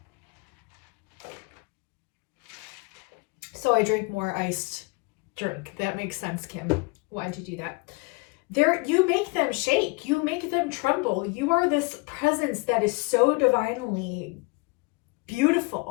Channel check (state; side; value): quieter; right; 28.1 dB